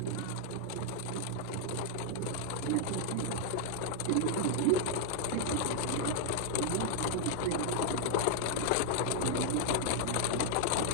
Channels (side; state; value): both; different; correlation 0.00